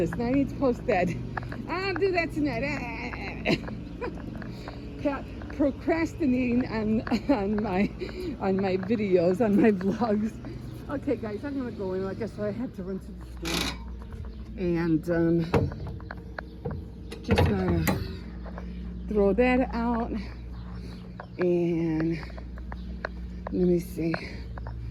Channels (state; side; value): identical; both; correlation 1.00